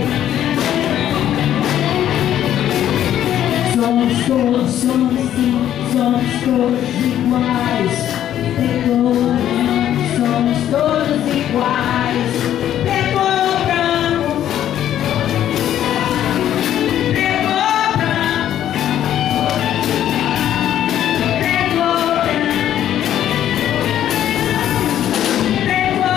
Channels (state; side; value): quieter; right; 11.2 dB